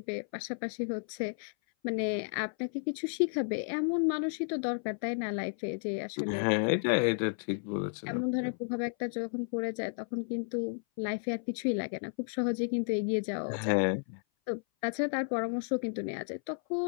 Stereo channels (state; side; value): silent; right; 56 dB below the other